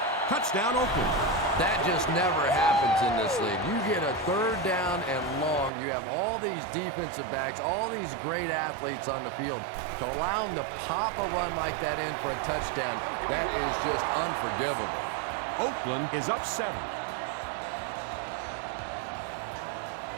Touchdown, Oakland. That just never happens in this league. You get a 3rd down and long. You have all these defensive backs, all these great athletes on the field. To allow them to pop a run like that in for a touchdown, that is just unforgivable. Oakland is up 7.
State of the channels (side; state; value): left; drops out; at 5.7 s